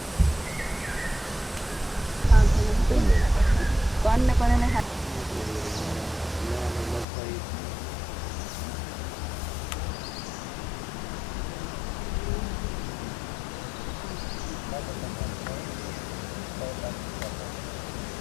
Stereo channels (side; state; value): right; drops out; at 7.1 s